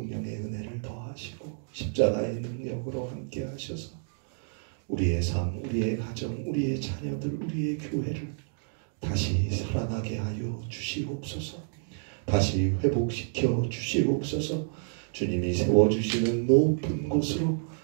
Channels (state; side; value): silent; left; digital silence